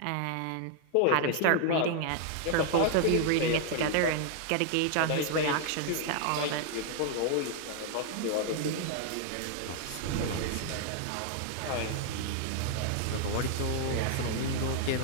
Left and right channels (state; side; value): different; both; correlation 0.00